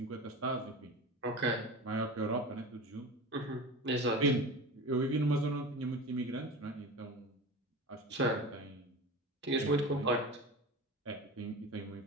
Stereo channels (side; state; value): both; normal; correlation 0.30